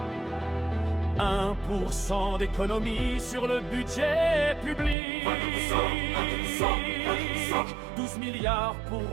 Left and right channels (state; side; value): drops out; left; at 5.0 s